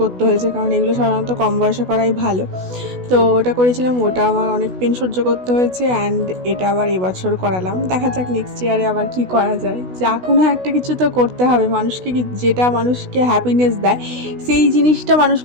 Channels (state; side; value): late; left; 16 ms